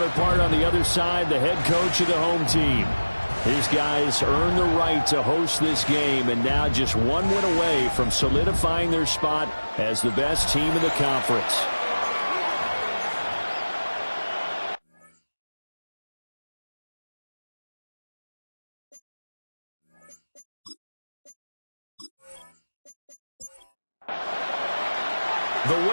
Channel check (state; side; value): inverted; both; correlation -1.00